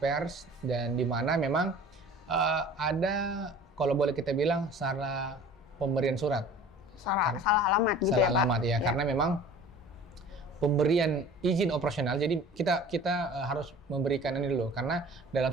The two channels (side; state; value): both; normal; correlation 0.44